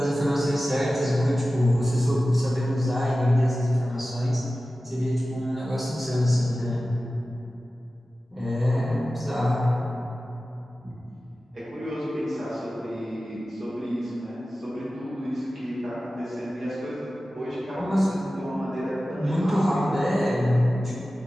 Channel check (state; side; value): normal; both; correlation 0.95